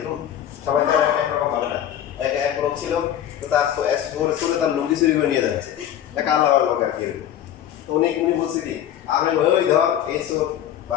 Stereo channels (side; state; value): right; quieter; 10.8 dB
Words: সবাই তো একরকম হবে না। এক লোক ছিল, তো তার সরে তার লুঙ্গি চুরি করে নিয়ে যাচ্ছে, একটা আলাদা লোক আর কি। তো উনি বলছে কি, আমি ওই ধর এই সব